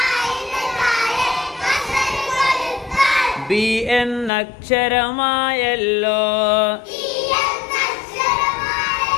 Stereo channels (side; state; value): right; drops out; at 4.3 s